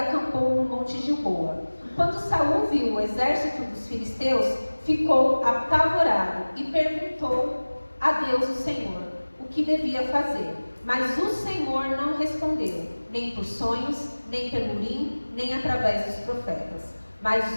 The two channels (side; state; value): both; inverted; correlation -1.00